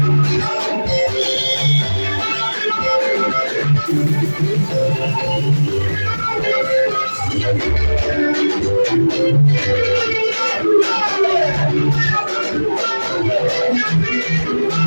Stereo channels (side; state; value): both; inverted; correlation -1.00